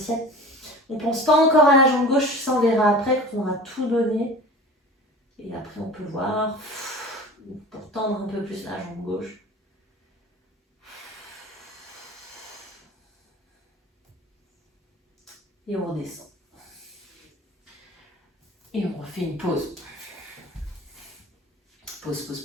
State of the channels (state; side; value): normal; both; correlation 0.39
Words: On ne pense pas encore à la jambe gauche, ça on verra après quand on aura tout donné. Et après, on peut voir pour tendre un peu plus la jambe gauche. Et on redescend. Et on refait une pause. Pause, pause,